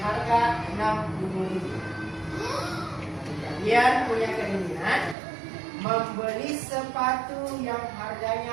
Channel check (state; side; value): drops out; left; at 5.2 s